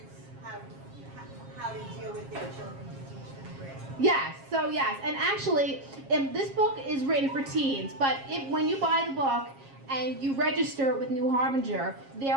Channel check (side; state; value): left; late; 7.4 ms